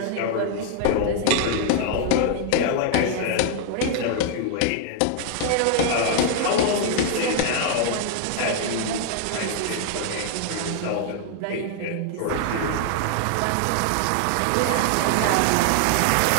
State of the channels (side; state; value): both; different; correlation 0.00